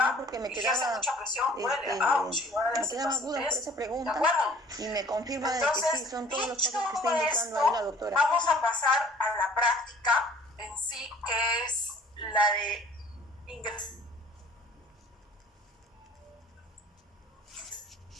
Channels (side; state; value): both; normal; correlation 0.52